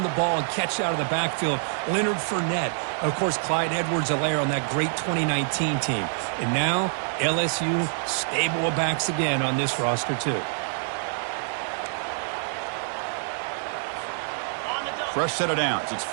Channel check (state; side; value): silent; left; digital silence